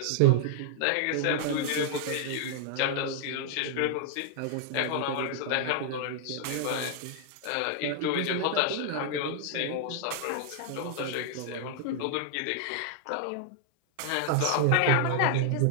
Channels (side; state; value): both; different; correlation -0.01